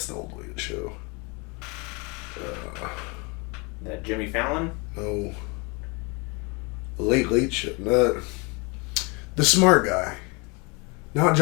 the old Late Show. That Jimmy Fallon? No. The Late Show. The smart guy. Not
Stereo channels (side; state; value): right; quieter; 30.0 dB